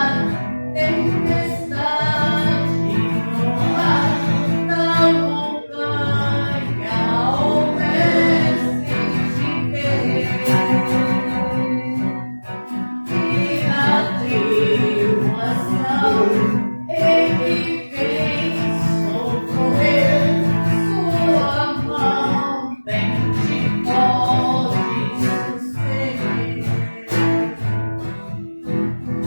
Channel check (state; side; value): inverted; both; correlation -1.00